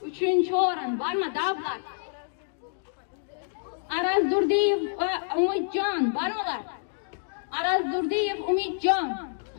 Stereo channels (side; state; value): right; silent; digital silence